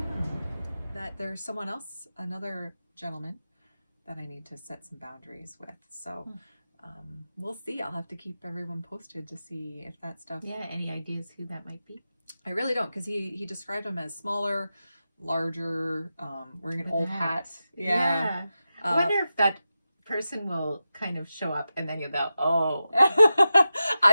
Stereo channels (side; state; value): both; inverted; correlation -0.92